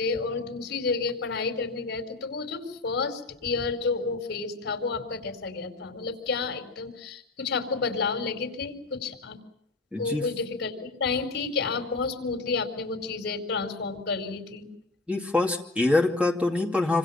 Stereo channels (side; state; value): right; quieter; 3.3 dB